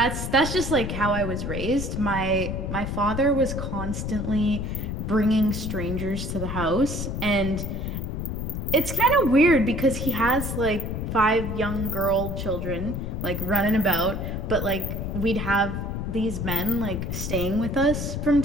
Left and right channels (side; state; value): left; noise; rumble, 4 dB below the sound